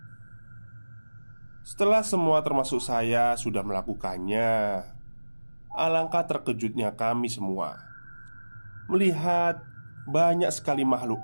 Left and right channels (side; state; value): both; inverted; correlation -1.00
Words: Setelah semua termasuk saya sudah melakukannya, alangkah terkejutnya kami semua melihat banyak sekali